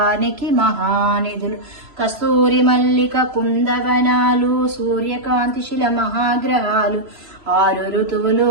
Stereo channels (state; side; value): late; left; 3.0 ms